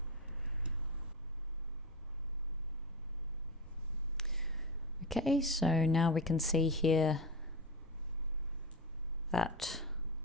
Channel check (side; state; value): both; normal; correlation 0.20